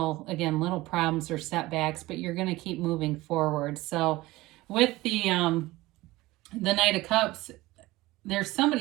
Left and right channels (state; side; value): quieter; left; 19.0 dB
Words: problems or setbacks, but you're going to keep moving forward. So with the Knight of Cups, there's